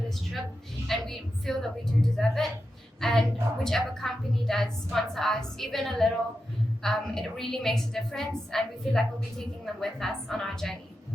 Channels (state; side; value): normal; both; correlation 0.89